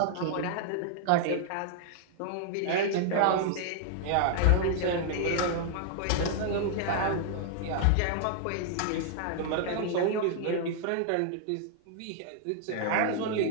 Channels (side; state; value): both; different; correlation -0.01